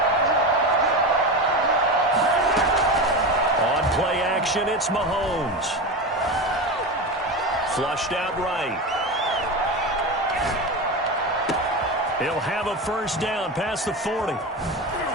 On play action, it's Mahomes. Flushed out right. He'll have a first down past the 40.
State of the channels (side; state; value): both; normal; correlation 0.22